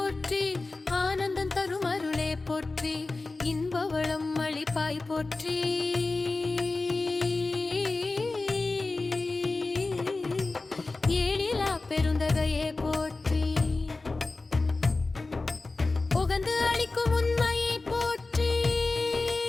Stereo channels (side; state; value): right; quieter; 3.4 dB